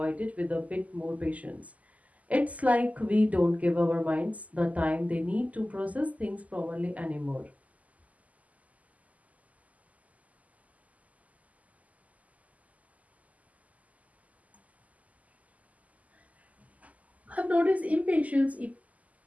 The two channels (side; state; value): left; late; 0.074 ms